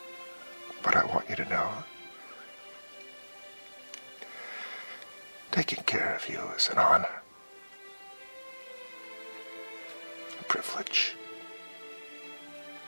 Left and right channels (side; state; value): both; inverted; correlation -1.00